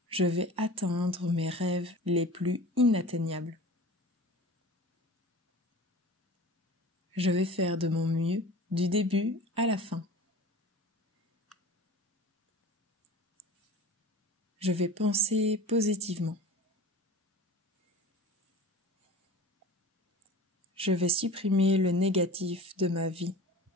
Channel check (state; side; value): normal; both; correlation 0.38